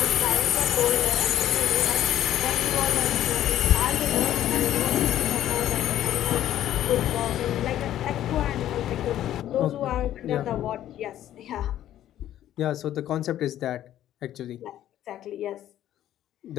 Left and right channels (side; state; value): right; quieter; 12.3 dB